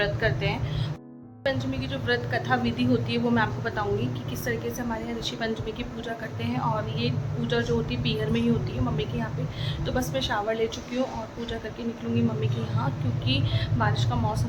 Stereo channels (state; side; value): identical; both; correlation 1.00